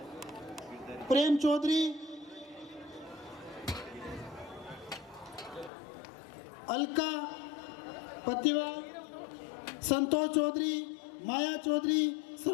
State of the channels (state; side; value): drops out; right; at 5.7 s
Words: प्रेम चौधरी, अलका पतिवाल, संतोष चौधरी, माया चौधरी,